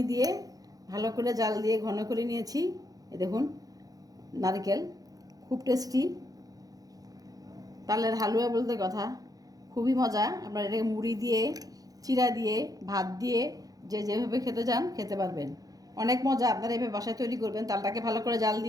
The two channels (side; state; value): left; late; 0.18 ms